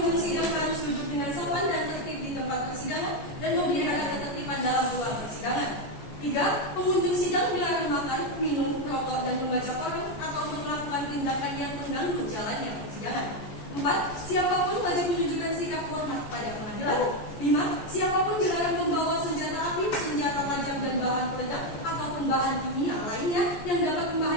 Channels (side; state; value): right; late; 14 ms